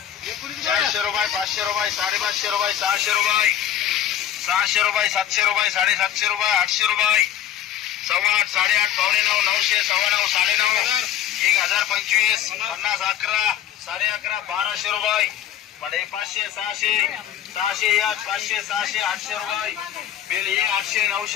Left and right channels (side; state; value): right; quieter; 10.9 dB